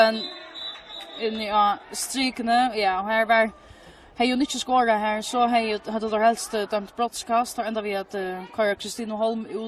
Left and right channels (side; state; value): both; identical; correlation 1.00